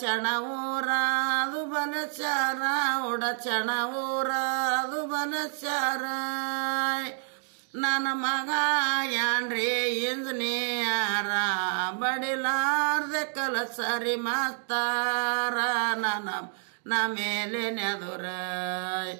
ಊರಾದು ಬಲಚಾರ ಉಡಚಣ ಊರಾದು ಬಲಚಾರ ನನ್ನ ಮಗ ಯಾನ್ರಿ ಇಂಜಿನಿಯರ ಬಡಿಲಾರ್ದೆ ಕಲಸರಿ ಮಾಸ್ತಾರ ನನ್ನ ಮೇಲೆ ನೆದುರ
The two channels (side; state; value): left; silent; 58 dB below the other